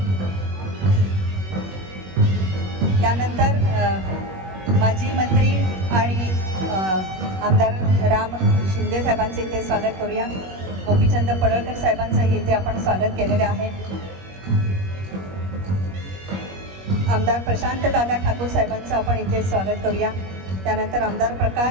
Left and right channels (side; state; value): left; late; 21 ms